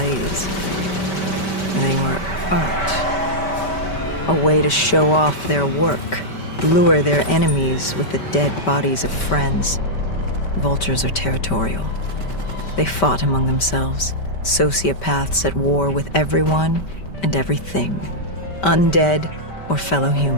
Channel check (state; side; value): late; right; 5.2 ms